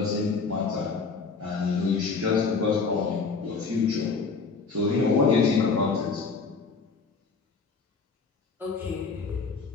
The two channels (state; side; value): quieter; right; 4.7 dB